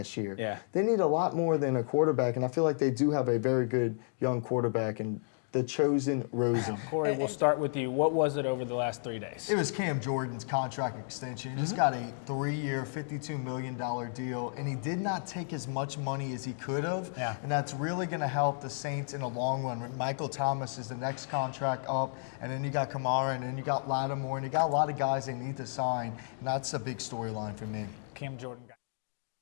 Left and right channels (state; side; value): silent; right; digital silence